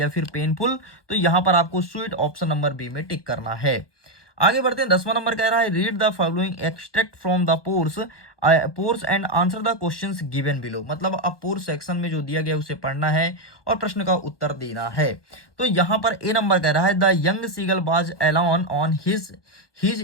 फिर पेनफुल, तो यहाँ पर आपको स्वीट ऑप्शन नंबर बी में टिक करना है। आगे बढ़ते हैं 10वां नंबर कह रहा है read the following extract from the pores and answer the questions given below, मतलब अब पोर्स सेक्शन में जो दिया गया उसे पढ़ना है और प्रश्न का उत्तर देना है। तो यहाँ पर ए नंबर कह रहा है the young seagull was alone on his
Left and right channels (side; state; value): right; late; 1.2 ms